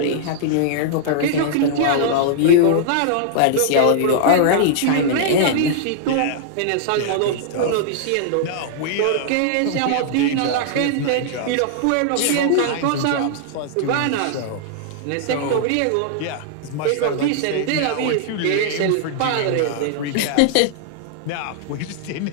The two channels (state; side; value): different; both; correlation -0.01